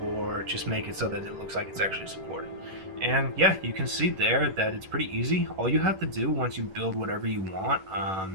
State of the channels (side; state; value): left; late; 11 ms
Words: or just make it so that it looks like it's actually supported. And yeah, you can see there that it's pretty easy. All you have to do once you build whatever you want,